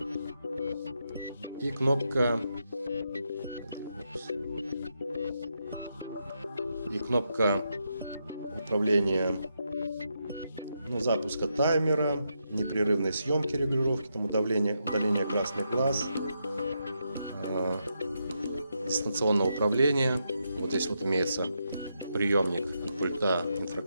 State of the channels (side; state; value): both; inverted; correlation -0.82